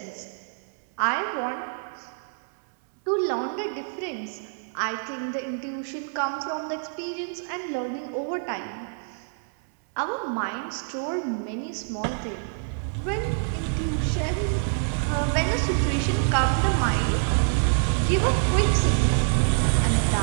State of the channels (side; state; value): left; silent; 61 dB below the other